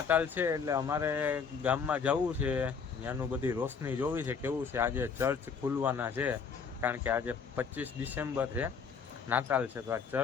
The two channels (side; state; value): right; quieter; 5.9 dB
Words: છે એટલે અમારે ગામમાં જવું છે, ત્યાંનું બધી રોશની જોવી છે કેવું છે. આજે ચર્ચ ખુલવાના છે કારણ કે આજે 25 ડિસેમ્બર છે, નાતાલ છે. તો આ